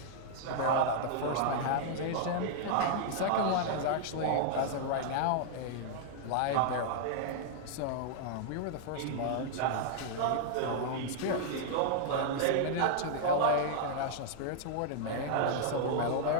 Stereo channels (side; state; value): both; different; correlation -0.01